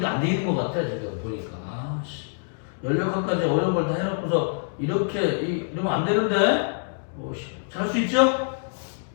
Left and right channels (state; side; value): silent; right; digital silence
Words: 안 돼 있는 것 같아. 지금 보니까. 아씨. 16학까지 어려운 걸 다 해놓고서 이렇게 이러면 안 되는데. 잘 할 수 있죠?